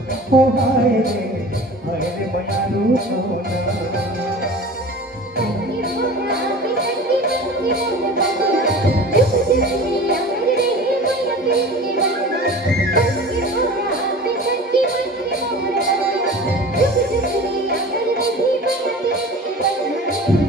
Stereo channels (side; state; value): both; normal; correlation 0.38